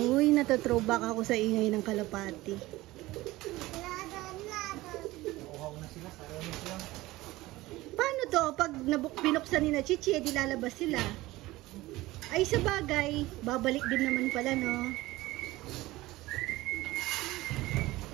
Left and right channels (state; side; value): quieter; left; 18.6 dB